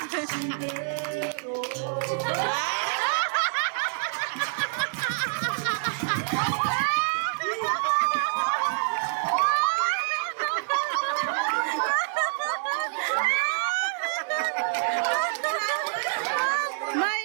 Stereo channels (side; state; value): left; silent; 60 dB below the other